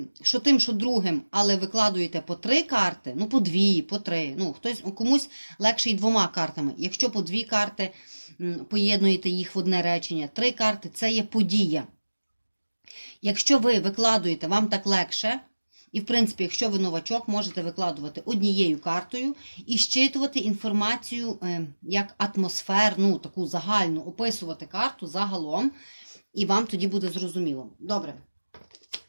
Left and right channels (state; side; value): inverted; both; correlation -1.00